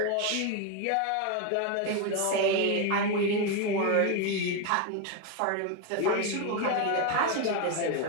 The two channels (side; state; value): both; different; correlation 0.02